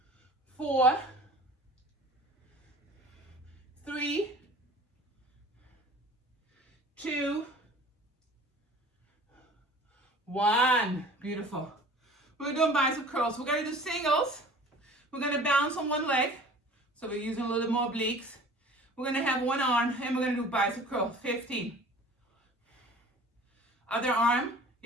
4. 3. 2. 1. Beautiful. We're doing bicep curls. We're going to do singles. We're going to balance on one leg. So we're using a little more obliques. We're going to have one arm and we're going to do bicep curl. 15. Other arm.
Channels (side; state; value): both; normal; correlation 0.45